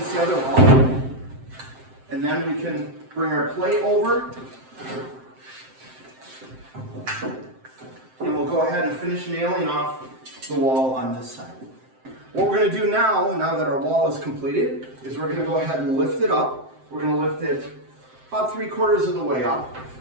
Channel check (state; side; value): late; left; 7.7 ms